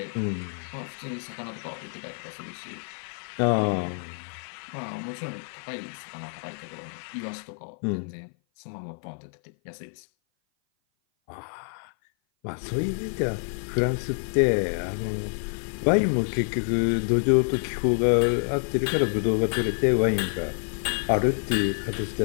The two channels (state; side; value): silent; right; 56 dB below the other